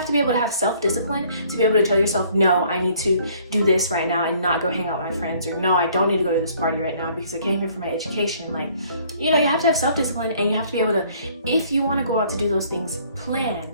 to be able to have self-discipline to be able to tell yourself, no, I need to do this right now and not go hang out with my friends, or no, I don't need to go to this party right now because I came here for my education. Like, you know, you have to have self-discipline, and you have to be able to, if you want to go out to do those things,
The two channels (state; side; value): inverted; both; correlation -0.59